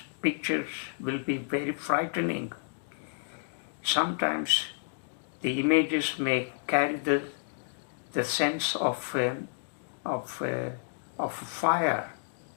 pictures will be very frightening. Sometimes the images may carry the sense of fire.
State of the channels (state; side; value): silent; right; digital silence